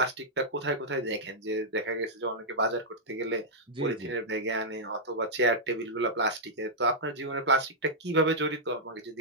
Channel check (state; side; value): normal; both; correlation -0.08